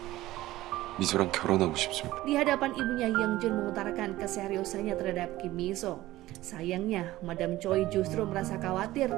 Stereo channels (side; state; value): left; quieter; 16.5 dB